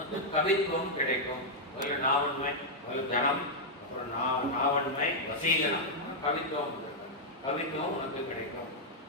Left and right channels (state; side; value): normal; both; correlation -0.05